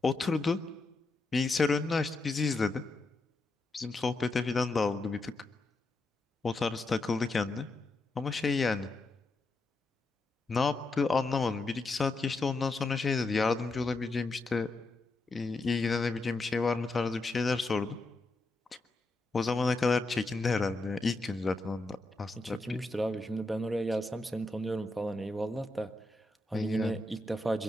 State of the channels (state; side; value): quieter; right; 3.1 dB